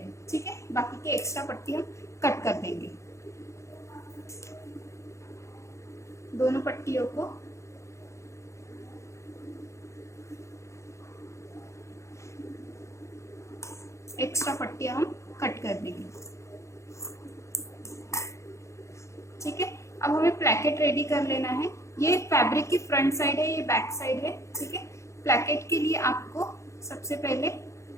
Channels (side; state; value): right; late; 0.14 ms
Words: ठीक है। बाकी के एक्स्ट्रा पट्टी हम कट कर देंगे। दोनों पट्टियों को एक्स्ट्रा पट्टियां हम कट कर देंगे, ठीक है। अब हमें प्लैकेट रेडी कर लेना है। ये फैब्रिक की फ्रंट साइड है, ये बैक साइड है, ठीक है। प्लैकेट के लिए आपको सबसे पहले